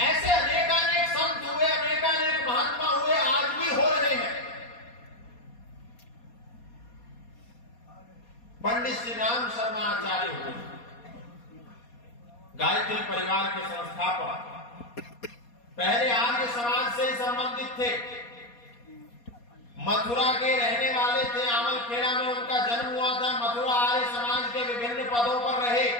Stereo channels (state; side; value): late; right; 4.2 ms